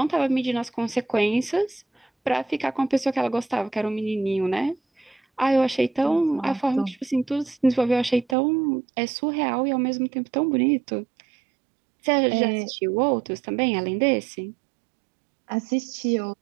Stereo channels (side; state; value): left; drops out; at 8.3 s